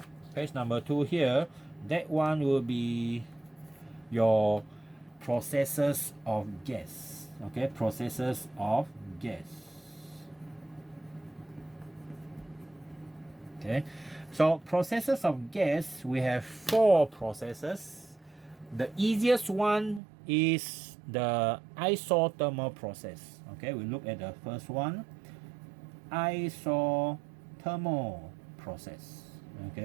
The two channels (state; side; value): drops out; left; at 20.0 s